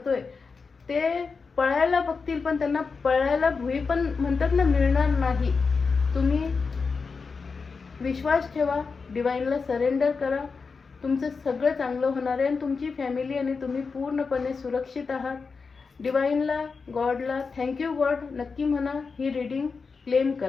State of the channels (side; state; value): right; quieter; 4.9 dB